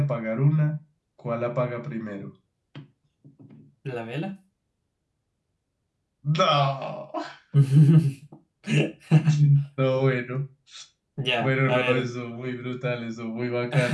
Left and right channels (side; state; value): both; identical; correlation 1.00